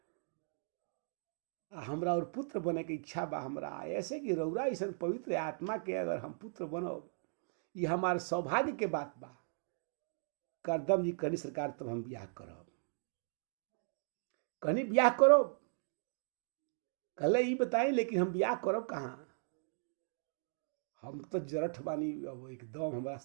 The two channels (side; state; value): left; silent; digital silence